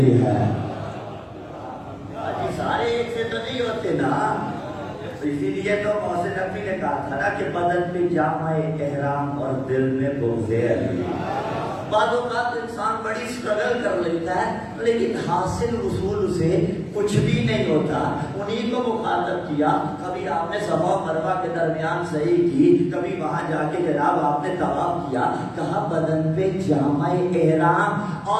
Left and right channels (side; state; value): both; identical; correlation 1.00